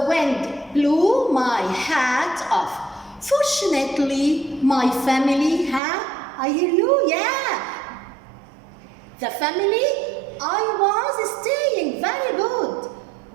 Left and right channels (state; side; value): drops out; left; at 5.8 s